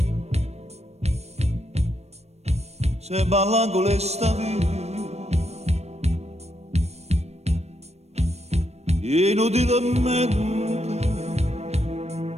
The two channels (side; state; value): left; late; 0.31 ms